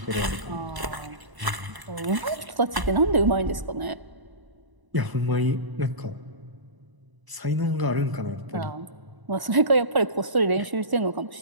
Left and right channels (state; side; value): late; left; 1.0 ms